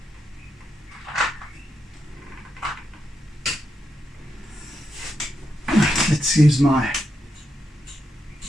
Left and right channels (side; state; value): both; normal; correlation 0.84